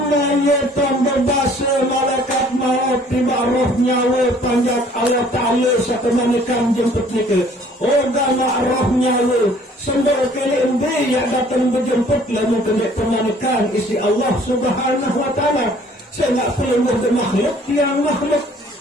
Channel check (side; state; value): both; normal; correlation 0.56